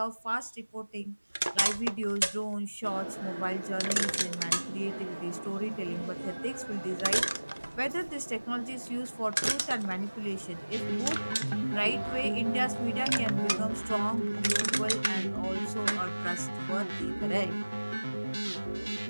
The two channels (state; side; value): inverted; both; correlation -1.00